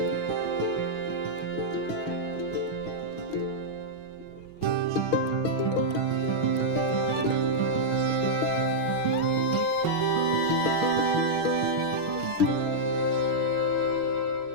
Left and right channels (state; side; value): late; right; 6.3 ms